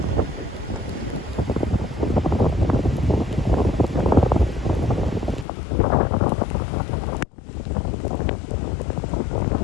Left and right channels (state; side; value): drops out; right; at 5.5 s